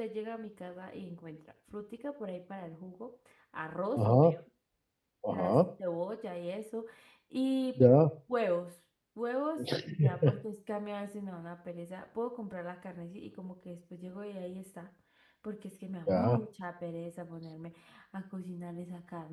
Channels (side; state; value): both; identical; correlation 1.00